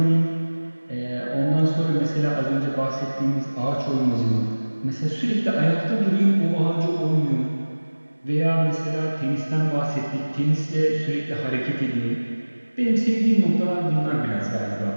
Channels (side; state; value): both; inverted; correlation -1.00